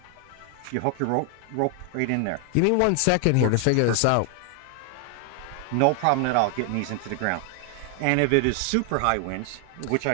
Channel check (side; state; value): both; different; correlation 0.00